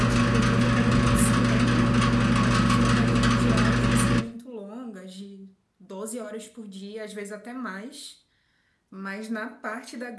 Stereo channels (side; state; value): both; identical; correlation 1.00